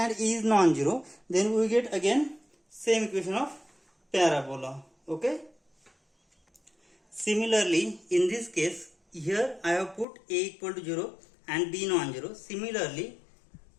a is non-zero, then we get again same equation of parabola. Okay. Similarly, in this case, here I have put a equal to 0 and b non-zero. Similarly,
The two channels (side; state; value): right; drops out; at 10.1 s